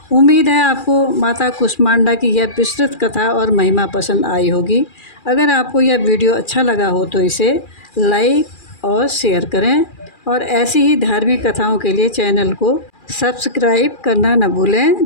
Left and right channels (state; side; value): late; right; 2.4 ms